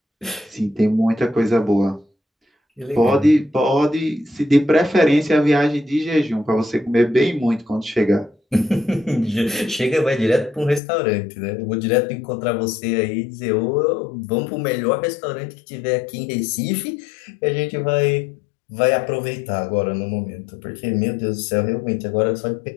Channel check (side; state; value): right; drops out; at 10.8 s